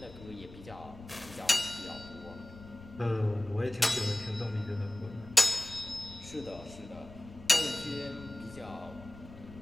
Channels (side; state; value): left; noise; rumble, 17 dB below the sound